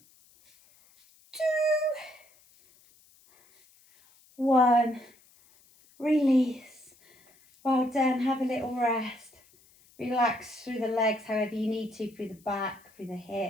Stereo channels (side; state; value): left; noise; hiss, 30 dB below the sound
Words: 2, 1. Release. Well done. Have a little rest. Relax through the legs however you need to, through the back, through the